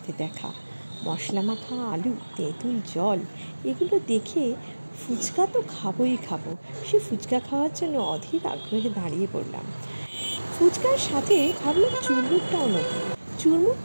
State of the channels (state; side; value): inverted; both; correlation -1.00